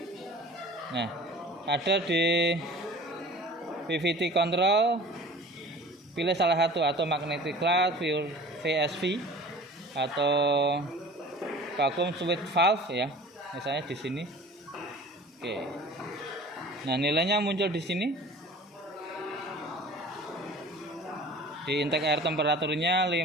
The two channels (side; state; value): both; normal; correlation 0.43